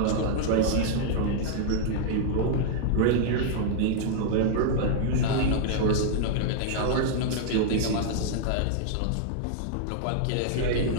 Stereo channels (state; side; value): different; both; correlation -0.01